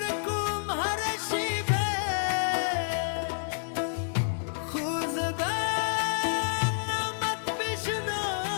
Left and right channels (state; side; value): silent; right; digital silence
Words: کوم ہر شیبے خوزبا نامت بشنو